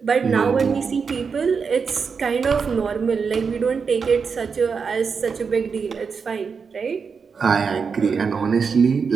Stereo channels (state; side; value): quieter; left; 5.6 dB